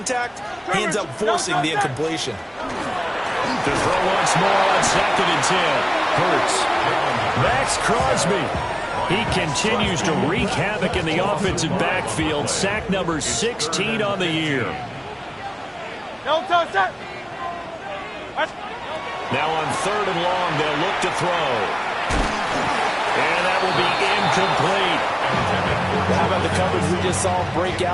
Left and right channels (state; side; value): identical; both; correlation 1.00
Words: He ends up forcing the incompletion. To throw once more on second and 10. Hurts. Max Crosby. He continues to wreak havoc in the offensive backfield. Sack number 16 on the year. Now on third and long, they'll look to throw. And that will be incomplete. How about the coverage we just saw break